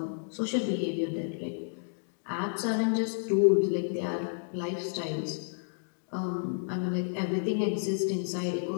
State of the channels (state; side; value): silent; right; digital silence